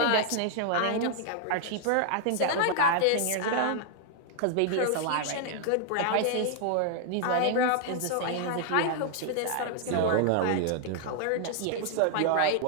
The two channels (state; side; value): different; both; correlation 0.00